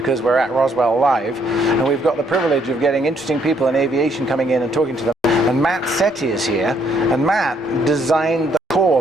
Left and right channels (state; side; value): normal; both; correlation 0.69